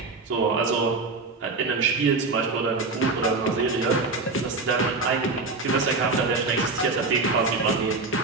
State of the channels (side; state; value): left; quieter; 3.8 dB